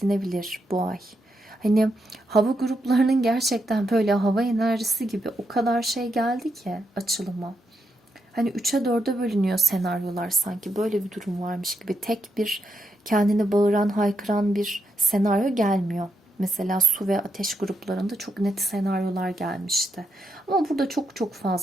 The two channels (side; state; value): both; normal; correlation 0.82